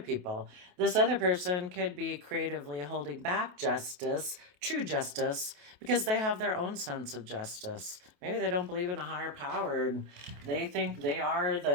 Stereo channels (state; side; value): late; left; 28 ms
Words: This other person could be creatively holding back justice, true justice, because they have their own sense of justice. Maybe they don't believe in a higher power and they think they are